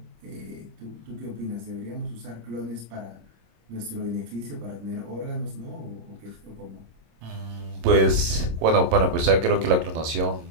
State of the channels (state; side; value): late; left; 26 ms